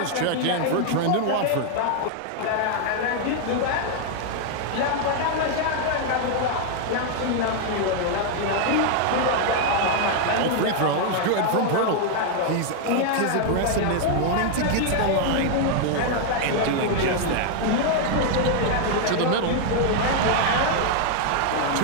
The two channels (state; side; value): different; both; correlation 0.00